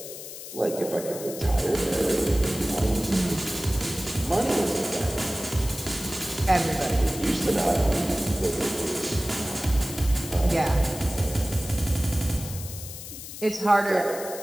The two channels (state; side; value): noise; left; hiss, 11 dB below the sound